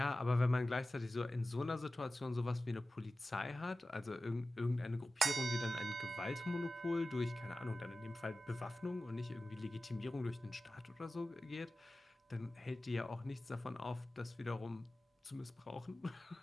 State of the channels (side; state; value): both; normal; correlation 0.95